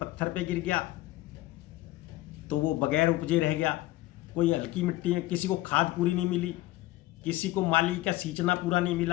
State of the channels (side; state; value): right; quieter; 17.3 dB